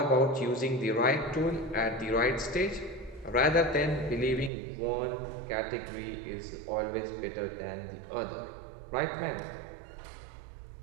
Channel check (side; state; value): left; drops out; at 4.5 s